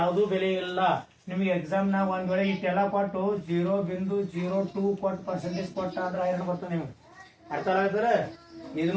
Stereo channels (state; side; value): identical; both; correlation 1.00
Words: ಬೆಲೆ ಇಲ್ಲ. ನಿಮ್ಗೆ ಎಕ್ಸಾಮ್ ನಾಗ ಒಂದ್ ವೇಳೆ ಇಟ್ಟೆಲ್ಲ ಕೊಟ್ಟು 0.02 ಕೊಟ್ಟು ಪರ್ಸೆಂಟೇಜ್ ಕೊಟ್ಟ ಅಂದ್ರೆ ಐರನ್ ಬರ್ತದೆ ನಿಮ್ಗೆ. ಅರ್ಥ ಆಗ್ತದ?